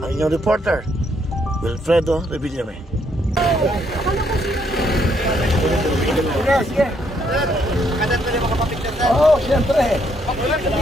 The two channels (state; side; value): normal; both; correlation 0.72